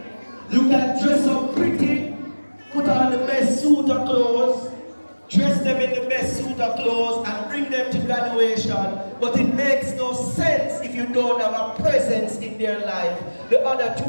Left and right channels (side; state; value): both; inverted; correlation -1.00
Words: You can dress up pretty, put on the best suit of clothes, dress them in the best suit of clothes and bring them to graduation, but it makes no sense if you don't have a presence in their life the other